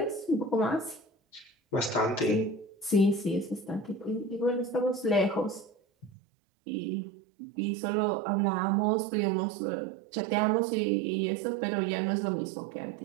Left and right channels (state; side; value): drops out; left; at 6.1 s